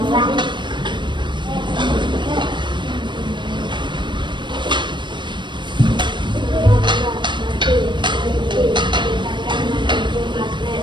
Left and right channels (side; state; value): left; late; 0.22 ms